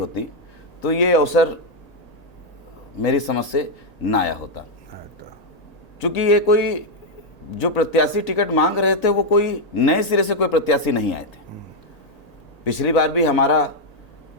तो ये अवसर मेरी समझ से ना आया होता, क्योंकि ये कोई जो प्रत्याशी टिकट मांग रहे थे वो कोई नए सिरे से कोई प्रत्याशी नहीं आए थे। पिछली बार भी हमारा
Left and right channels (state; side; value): late; right; 1.8 ms